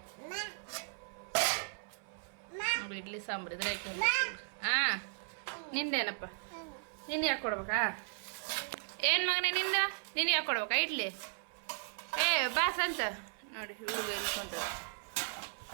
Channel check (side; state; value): left; silent; 54 dB below the other